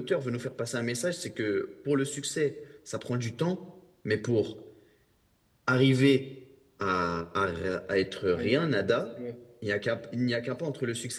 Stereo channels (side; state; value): both; identical; correlation 1.00